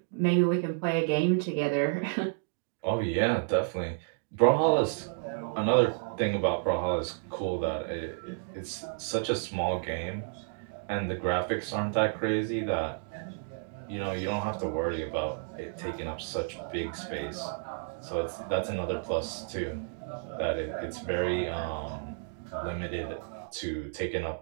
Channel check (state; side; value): silent; left; digital silence